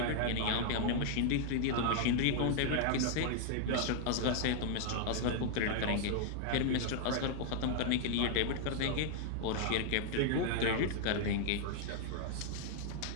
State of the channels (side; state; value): both; different; correlation 0.00